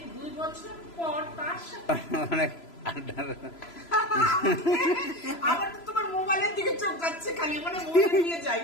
2 বছর পর তার সাথে আমার তো তোমার মোবাইলের দিকে চোখ যাচ্ছে খালি, মানে মোবাইল নিয়ে যাই।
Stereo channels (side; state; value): right; late; 3.0 ms